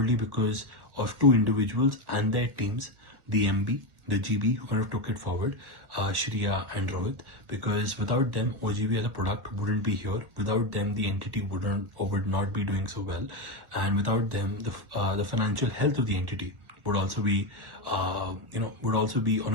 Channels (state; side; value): late; left; 1.5 ms